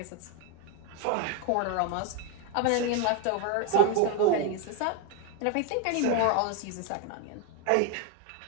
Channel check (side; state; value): both; different; correlation 0.01